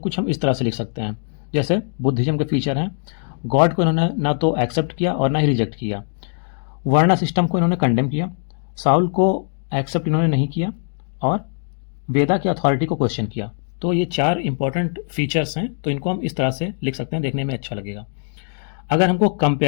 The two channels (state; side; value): silent; right; digital silence